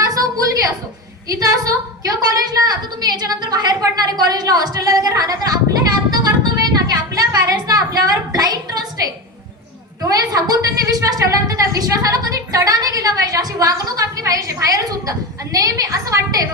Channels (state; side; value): normal; both; correlation 0.22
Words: असो मुलगी असो, इथं असो किंवा कॉलेजला. आता तुम्ही याच्यानंतर बाहेर पडणारे कॉलेजला हॉस्टेलला वगैरे राहणार, तर आपलं हे आत्ता कर्तव्य आहे ना की आपल्या पॅरेंट्सला आपल्यावर ब्लाइंड ट्रस्ट आहे, डोळे झाकून त्यांनी विश्वास ठेवल्यानंतर त्या विश्वासाला कधी तडा नाही गेला पाहिजे, अशी वागणूक आपली पाहिजे बाहेर सुद्धा. आणि नेहमी असं वाटतंय